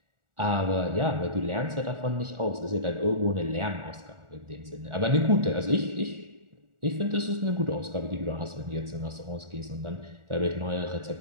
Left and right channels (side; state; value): left; late; 1.4 ms